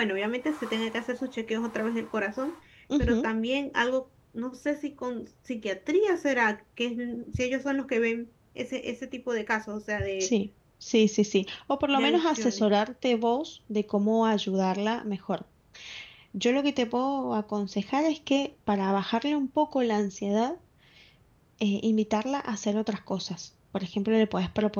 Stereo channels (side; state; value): both; identical; correlation 1.00